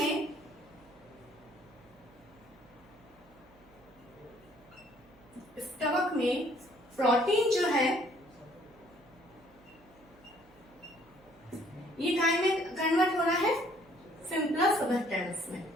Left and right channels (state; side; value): noise; right; hum, 28 dB below the sound